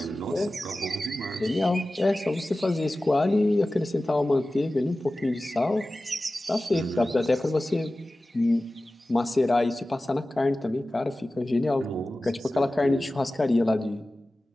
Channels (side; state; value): both; normal; correlation 0.96